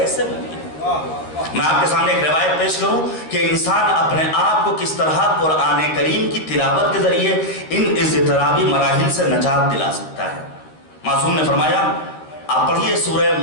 ممکن ہے؟ میں آپ کے سامنے ایک روایت پیش کروں کہ انسان اپنے آپ کو کس طرح قرآن کریم کی تلاوت کے ذریعے ان اضطرابی مراحل سے نجات دلا سکتا ہے. معصوم نے فرمایا، آپ پڑھیے سورہ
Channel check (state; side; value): late; right; 13 ms